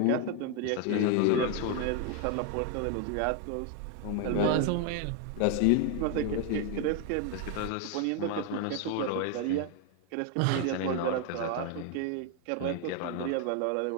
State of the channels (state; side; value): different; both; correlation 0.01